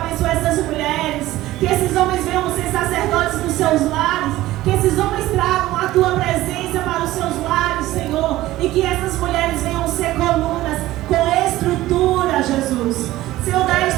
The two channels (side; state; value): left; quieter; 16.2 dB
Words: essas mulheres. Que esses homens venham ser sacerdotes dos seus lares. Que esses homens tragam a tua presença para os seus lares, Senhor. E que essas mulheres venham ser colunas com estrutura, Jesus. Senhor, dá